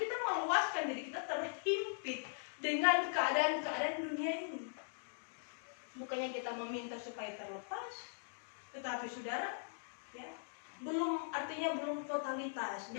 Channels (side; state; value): right; silent; digital silence